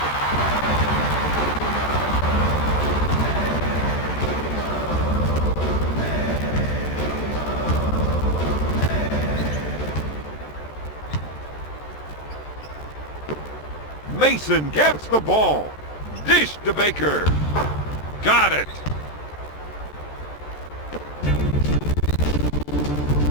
Mason gets the ball. Dish to Baker. Got it.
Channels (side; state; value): right; late; 14 ms